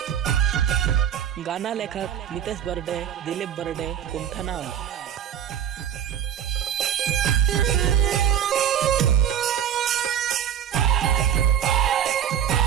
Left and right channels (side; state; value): left; quieter; 9.6 dB